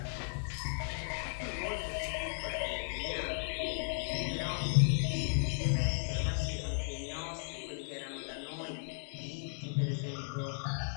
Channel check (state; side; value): silent; right; 54 dB below the other